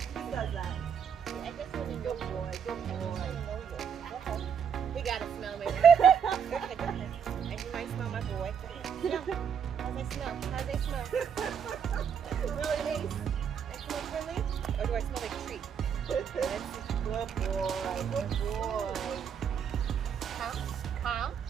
does that. I guess when you good boy, good boy. He gotta smell me. And you might smell my boy. Smell. How's they smell? How's they smell? Really nice. I smell friendly? Or do I smell like a treat? Good boy, good boy. Calm.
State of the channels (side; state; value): left; quieter; 7.5 dB